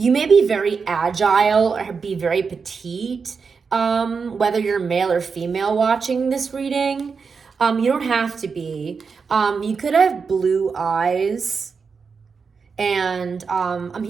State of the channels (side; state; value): left; quieter; 5.4 dB